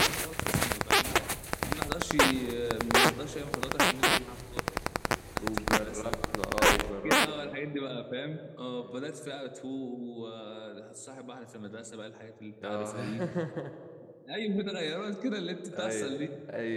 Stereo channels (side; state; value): both; identical; correlation 1.00